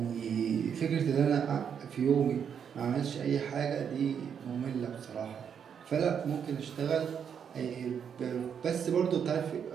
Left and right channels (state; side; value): quieter; left; 7.7 dB